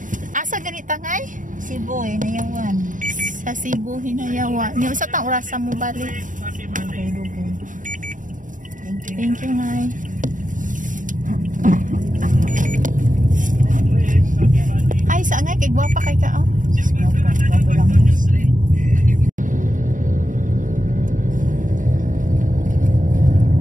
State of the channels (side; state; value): left; late; 0.38 ms